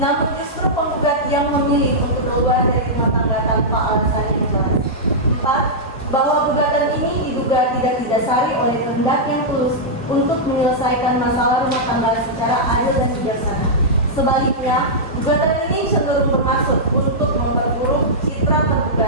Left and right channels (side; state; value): both; normal; correlation -0.10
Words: namun justru penggugat yang memilih untuk keluar dari rumah tangga tanpa alasan yang jelas. 4. Bahwa gugatan ini diduga tidak didasari oleh kehendak yang tulus untuk menyelesaikan masalah rumah tangga secara adil dan bijaksana. Sebaliknya, gugatan ini cenderung bermaksud untuk memperburuk citra